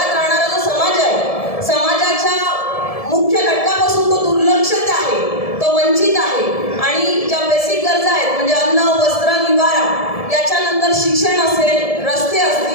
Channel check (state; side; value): late; right; 1.7 ms